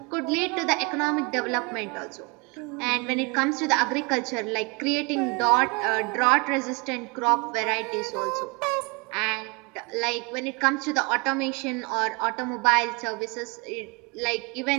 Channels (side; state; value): left; quieter; 30.2 dB